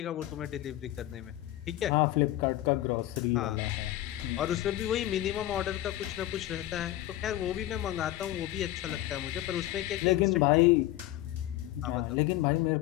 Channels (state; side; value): quieter; right; 14.9 dB